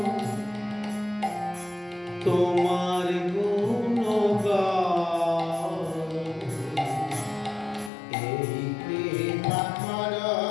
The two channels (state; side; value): drops out; right; at 7.9 s